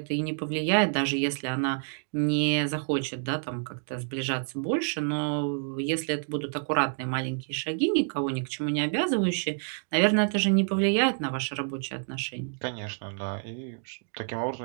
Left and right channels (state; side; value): silent; left; 58 dB below the other